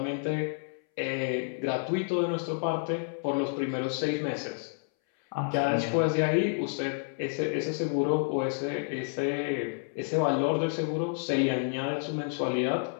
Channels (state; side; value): silent; right; 58 dB below the other